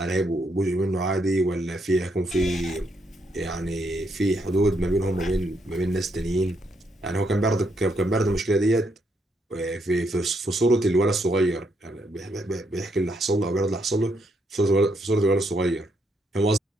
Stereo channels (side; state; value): both; normal; correlation 0.76